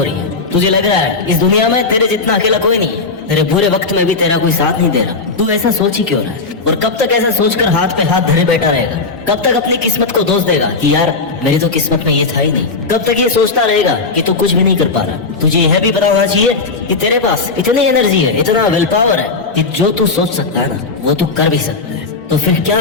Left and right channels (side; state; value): right; quieter; 4.0 dB